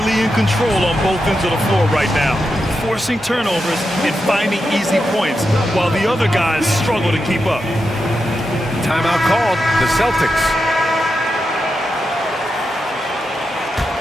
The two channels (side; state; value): both; normal; correlation 0.87